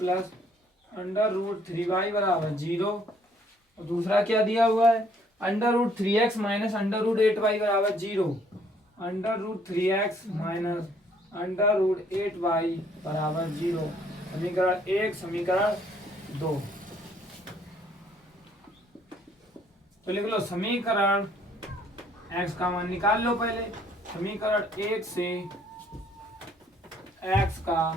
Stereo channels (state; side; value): normal; both; correlation 0.63